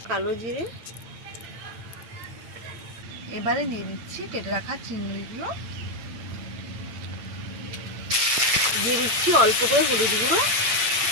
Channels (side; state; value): left; late; 8.3 ms